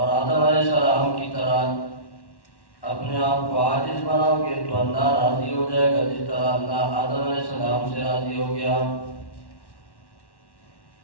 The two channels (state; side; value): late; right; 1.1 ms